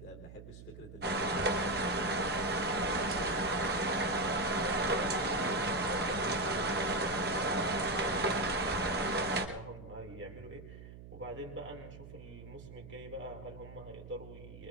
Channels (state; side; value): noise; right; hum, 15 dB below the sound